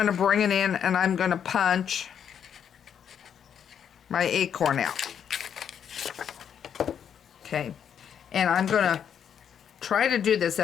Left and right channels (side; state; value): right; quieter; 8.4 dB